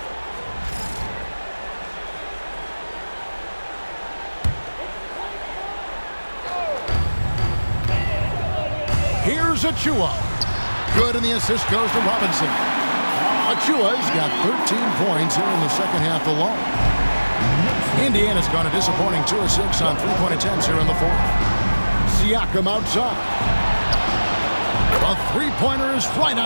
Here's Achua. Good, and the assist goes to Robinson. Achua's got 13 points here in the second half alone. Indiana's gone a disappointing 2 of 6 on 3-point attempts here in the fourth. Siakam outside. A three-pointer is right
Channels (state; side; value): inverted; both; correlation -1.00